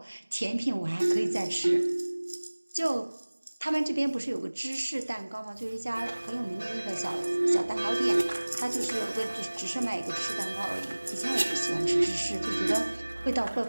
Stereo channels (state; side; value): inverted; both; correlation -1.00